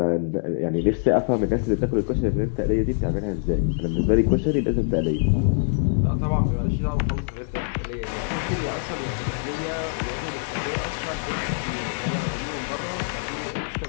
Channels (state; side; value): silent; right; digital silence